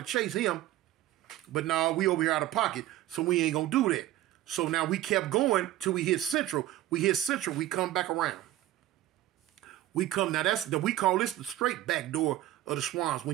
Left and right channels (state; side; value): quieter; left; 14.4 dB